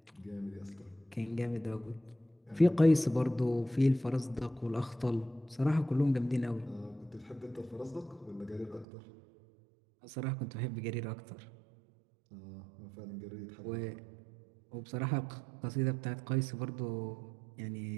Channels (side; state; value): left; drops out; at 8.8 s